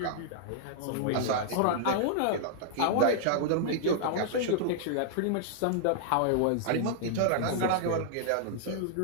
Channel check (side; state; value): both; different; correlation -0.01